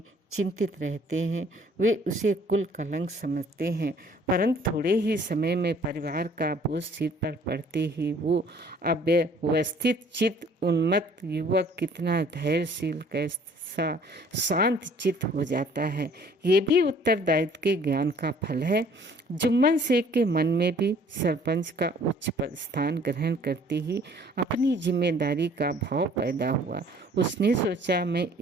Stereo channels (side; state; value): both; normal; correlation 0.56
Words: चिंतित रहते हैं। वे उसे कुल कलंक समझते हैं, परंतु थोड़े ही समय में परिवार का बोझ सिर पर पड़ते ही वो अव्यवस्थित चित्त उन्मत्त युवक कितना धैर्यशील, कैसा शांत चित्त हो जाता है। ये भी उत्तरदायित्व के ज्ञान का फल है। जुम्मन शेख के मन में भी सरपंच का उच्च स्थान ग्रहण करते ही अपनी जिम्मेदारी का भाव पैदा हुआ। उसने सोचा, मैं